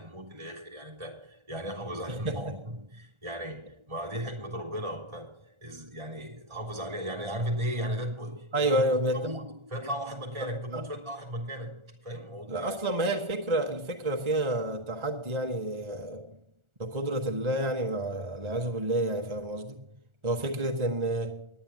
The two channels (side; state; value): left; late; 1.4 ms